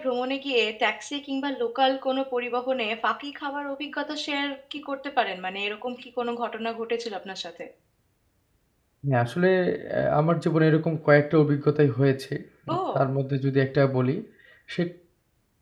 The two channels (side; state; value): both; identical; correlation 1.00